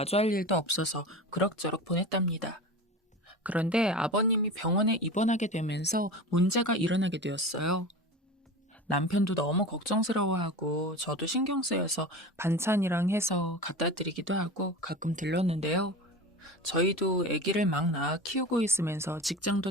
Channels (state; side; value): normal; both; correlation 0.31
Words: 일도 없어서 그럭저럭 보냈답니다. 그런데 아버님이 병원에 입원하게 되면서 문제가 일어나게 되었어요. 남편도 너무 걱정스러워하고 저도 신경 쓰여서 반찬이랑 해서 갖다 드리기도 하고 가끔 들렀는데요. 저희도 아기를 막 낳아 키우고 있으면서